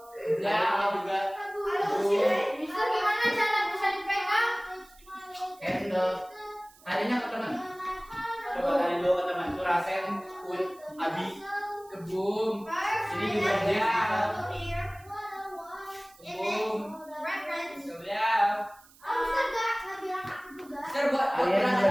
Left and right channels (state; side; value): noise; right; hiss, 26 dB below the sound